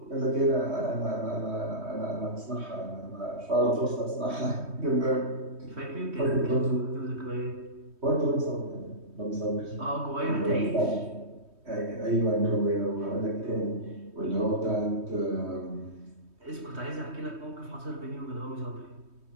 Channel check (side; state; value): left; late; 3.2 ms